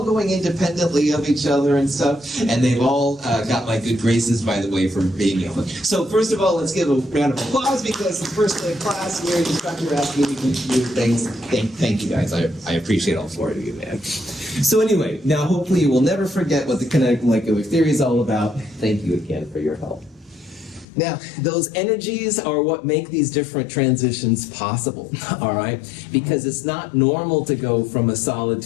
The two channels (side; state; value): right; drops out; at 20.9 s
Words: going independently of each other and stuff. And they've all got my good graces, by the way, for being able. So first of all, let's give a round of applause because the first day of class here, the instructor asked me to do things. Thank you guys. I appreciate all 4 of you, man. So anyway, now hopefully you will never forget what the kinetic molecular theory is all about. Thank you again for your help. Now, those energies are what make these different transitions possible, all right? Because it's not normal to go from a solid